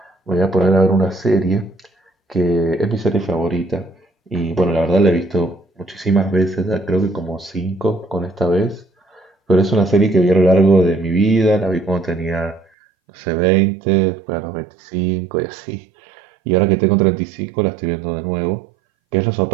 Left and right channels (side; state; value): left; drops out; at 12.7 s